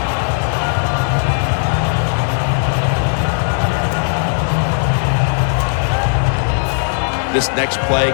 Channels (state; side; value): silent; right; 63 dB below the other